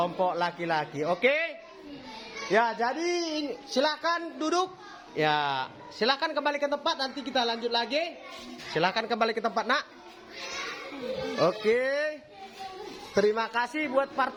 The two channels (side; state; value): both; identical; correlation 1.00